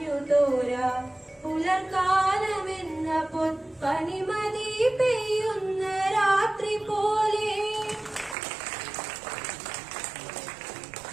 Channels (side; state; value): left; drops out; at 8.3 s